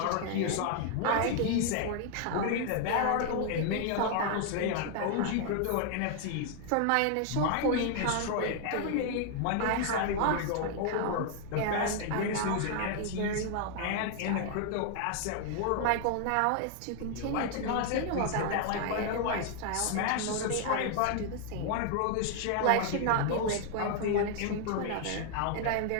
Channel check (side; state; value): both; different; correlation 0.00